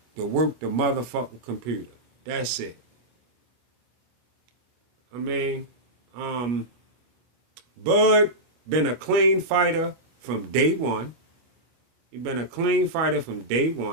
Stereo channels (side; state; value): left; late; 25 ms